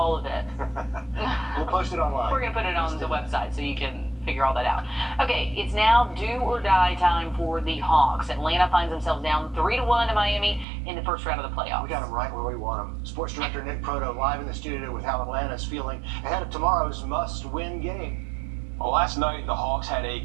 of it. We'll post it online. We're going to put it on the website so you can figure all that out. Okay, it's now do or die time for the Hawks. Atlanta finds themselves down 3-1 to Miami in the first round of the playoffs. We got them right where we want them. Sports director Nick Proto live in the studio with how Atlanta's feeling ahead of tomorrow's must-win game. Well, last night the Hawks had a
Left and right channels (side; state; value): left; drops out; at 10.7 s